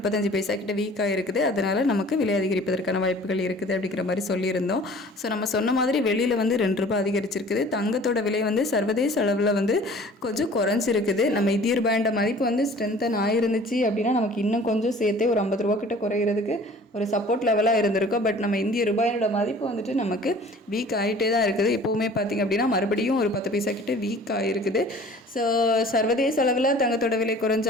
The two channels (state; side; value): normal; both; correlation 0.48